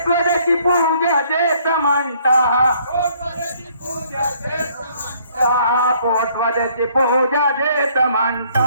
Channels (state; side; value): inverted; both; correlation -0.63